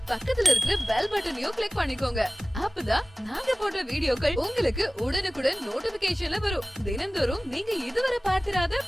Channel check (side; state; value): both; normal; correlation 0.98